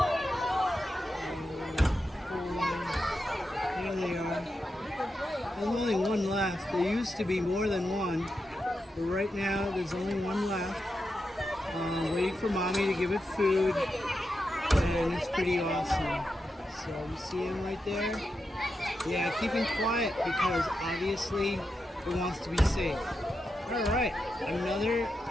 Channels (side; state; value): both; normal; correlation 0.87